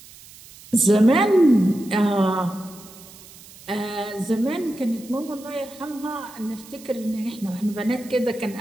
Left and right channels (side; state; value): right; noise; hiss, 20 dB below the sound